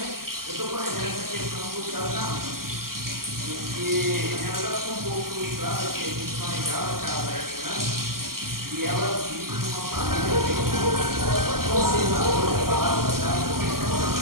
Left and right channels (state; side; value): late; left; 0.92 ms